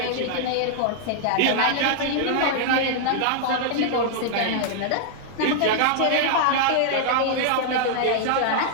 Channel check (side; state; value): both; different; correlation -0.01